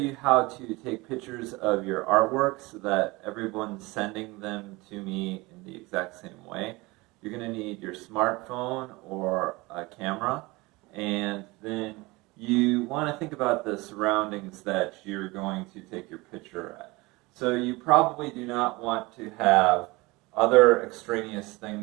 how to take pictures of your artwork so that everyone's sending them to me in the exact same way. You're going to need your smartphone or a camera, and then you want to think about the surroundings that you're going to take your picture at. So you probably do not want to have other extraneous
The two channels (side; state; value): left; quieter; 23.0 dB